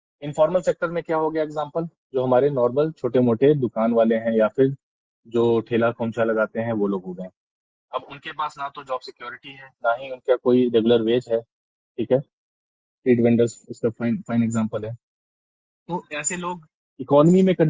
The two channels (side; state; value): both; identical; correlation 1.00